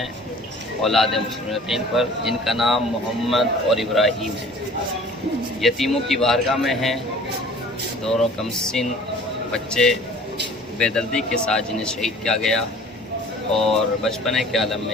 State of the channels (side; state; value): both; normal; correlation 0.48